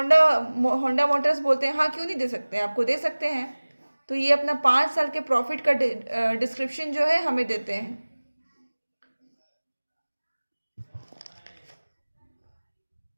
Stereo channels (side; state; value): both; inverted; correlation -1.00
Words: होंडा मोटर्स बोलते हैं हाँ क्यों नहीं दे सकते, आपको दे सकते हैं। तो ये अपना 5 साल के प्रॉफिट का डिस्क्रिप्शन जो है हमें देते हैं।